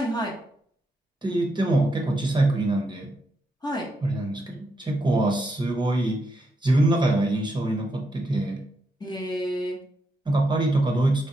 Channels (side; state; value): both; normal; correlation 0.82